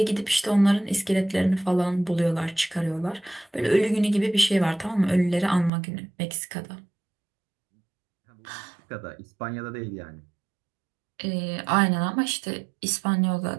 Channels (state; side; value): drops out; left; at 5.7 s